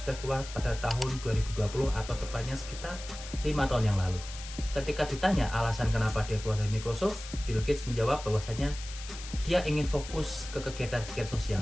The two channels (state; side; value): noise; left; hiss, 13 dB below the sound